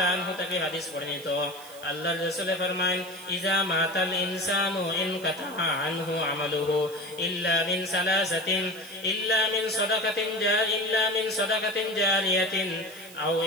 আনহু থেকে হাদিস বর্ণিত, আল্লাহর রাসূল ফরমায়েন, ইজা মাতাল ইনসানু ইনকাতা আনহু আমালুহু ইল্লা মিন সালাসাতিন, ইল্লা মিন সাদাকাতিন জারিয়াতিন আও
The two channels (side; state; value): right; noise; hiss, 19 dB below the sound